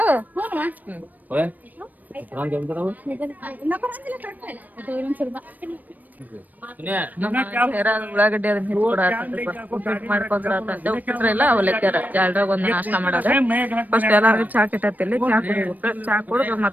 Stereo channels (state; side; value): late; left; 0.083 ms